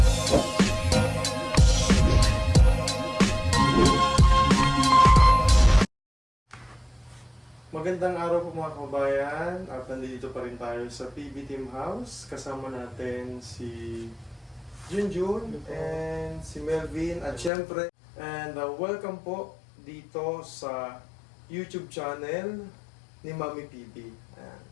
Magandang araw po mga kababayan at nandito pa rin tayo sa PB Team House. Kasama natin si Junjun and si Melvin at syempre welcome po dito sa YouTube channel ni Mami PB. Ayan.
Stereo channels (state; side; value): drops out; right; at 17.5 s